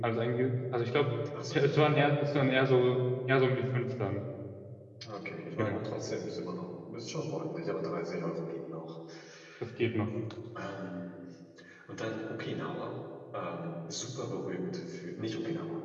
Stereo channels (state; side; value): identical; both; correlation 1.00